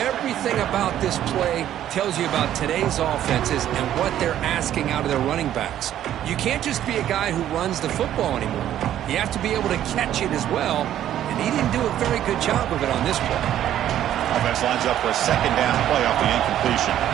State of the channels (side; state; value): left; quieter; 11.5 dB